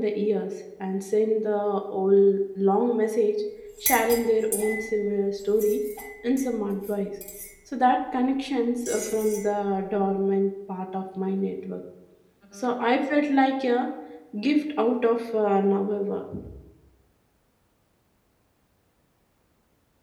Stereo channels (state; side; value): identical; both; correlation 1.00